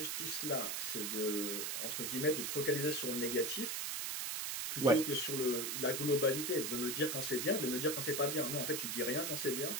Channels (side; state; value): right; noise; hiss, 1 dB below the sound